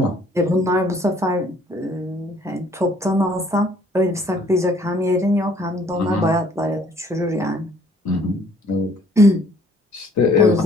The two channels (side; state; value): both; normal; correlation 0.60